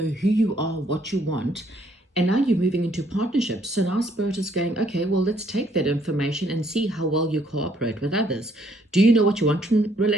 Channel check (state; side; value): normal; both; correlation 0.67